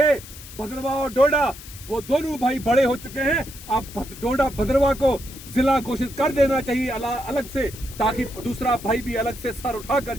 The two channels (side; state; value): left; noise; hiss, 16 dB below the sound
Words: भद्रवाह और डोडा, वो दोनों भाई बड़े हो चुके हैं। अब डोडा भद्रवाह को जिला घोषित कर देना चाहिए अलग से, ताकि दूसरा भाई भी अलग से सर उठाकर